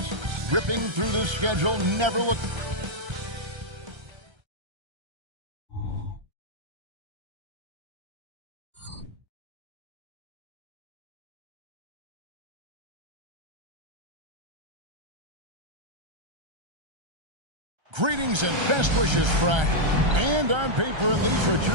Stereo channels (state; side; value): late; left; 1.3 ms